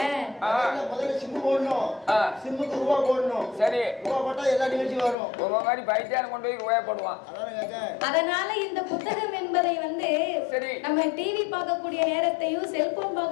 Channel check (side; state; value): right; drops out; at 5.2 s